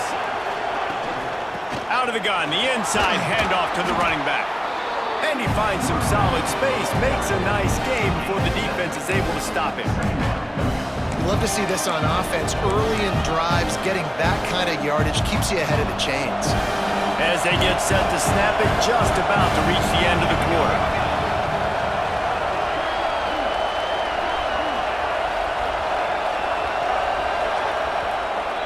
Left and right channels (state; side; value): identical; both; correlation 1.00